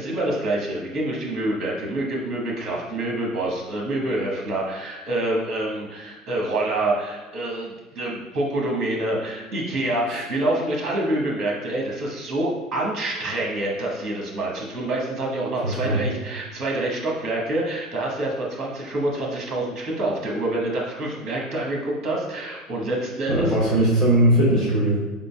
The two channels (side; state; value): both; normal; correlation 0.35